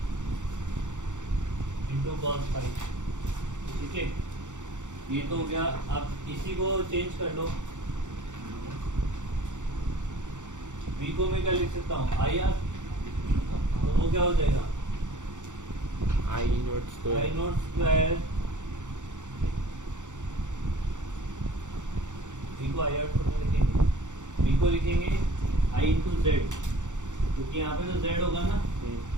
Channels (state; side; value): late; left; 0.85 ms